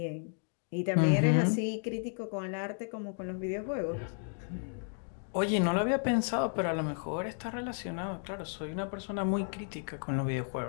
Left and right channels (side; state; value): right; silent; 56 dB below the other